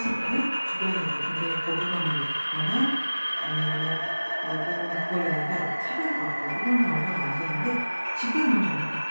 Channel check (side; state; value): both; inverted; correlation -1.00